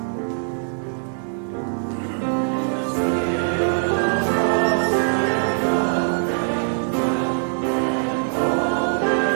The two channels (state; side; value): silent; left; digital silence